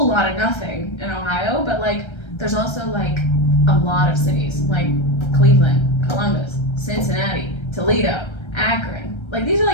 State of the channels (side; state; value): right; late; 1.3 ms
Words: lot of nothing in Ohio, but like there's also like a lot of cities like Cleveland, Columbus, Cincinnati, Toledo, Akron. Like these are